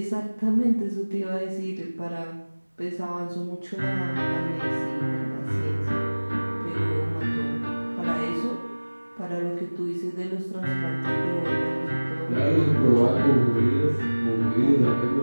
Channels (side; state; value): both; inverted; correlation -1.00